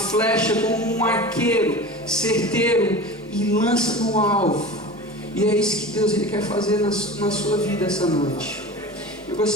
como um arqueiro certeiro e lança no alvo. E é isso que Deus, ele quer fazer na sua vida essa noite. Eu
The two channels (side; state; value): both; normal; correlation 0.33